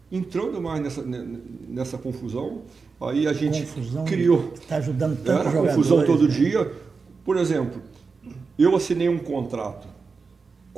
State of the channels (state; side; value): quieter; left; 4.7 dB